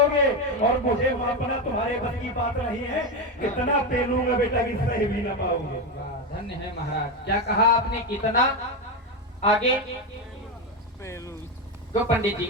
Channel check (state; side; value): normal; both; correlation 0.13